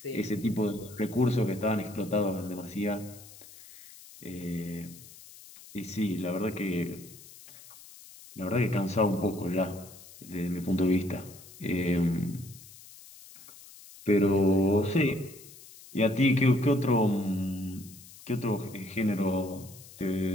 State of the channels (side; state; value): left; noise; hiss, 19 dB below the sound